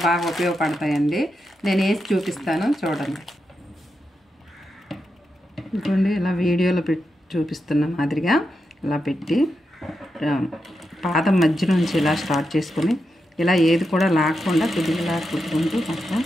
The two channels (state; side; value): normal; both; correlation 0.86